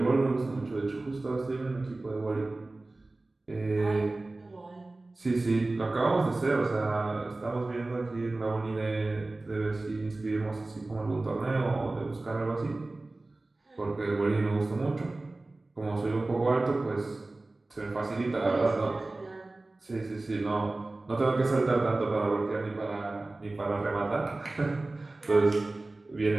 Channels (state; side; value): quieter; left; 3.0 dB